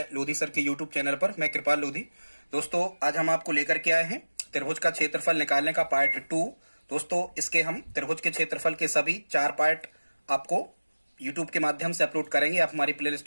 Lodhi sir के यूट्यूब चैनल पर। मैं कृपाल लोधी। दोस्तों, आज हम आपको लेकर के आए हैं त्रिभुज का क्षेत्रफल निकालने का पार्ट 2। दोस्तों, इसके हम त्रिभुज के क्षेत्रफल के सभी 4 पार्ट आपको यूट्यूब के माध्यम से अपलोड करेंगे। आप हमारी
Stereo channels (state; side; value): inverted; both; correlation -1.00